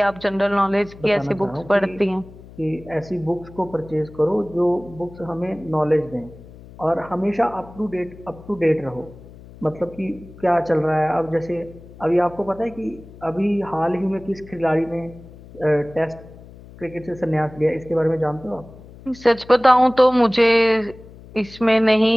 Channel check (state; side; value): noise; left; hum, 19 dB below the sound